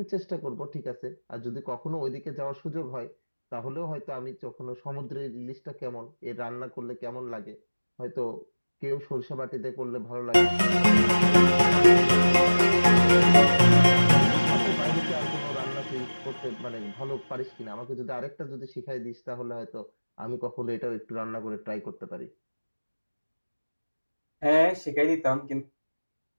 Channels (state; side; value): inverted; both; correlation -1.00